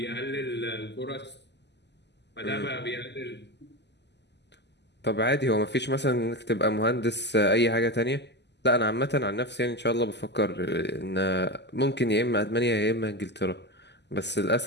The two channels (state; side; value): late; right; 0.50 ms